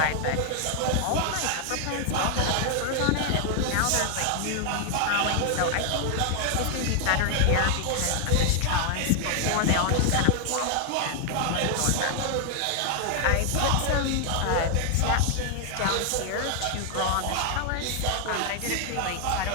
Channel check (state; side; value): different; both; correlation 0.00